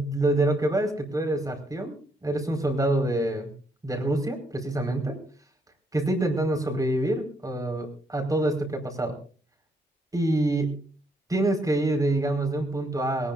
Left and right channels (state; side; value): normal; both; correlation 0.73